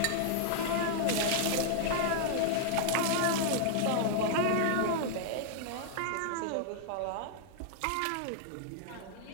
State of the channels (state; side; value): different; both; correlation 0.00